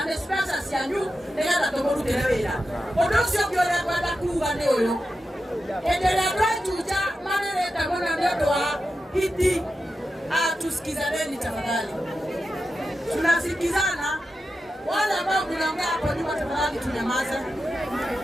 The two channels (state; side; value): normal; both; correlation 0.90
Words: nĩ mbeca cianyu nĩgetha tũmũrutĩre wĩra. Ũndũ ũcio ũngĩ ũrĩa ngwenda kuuga nĩ ũyũ. endelea tuja maneno mwana ndio wa hiti. Tusikizaneni tafadhali. Tunasikizana. Wale ambao mnaongea hapo nyuma tafadhali tunyamaze.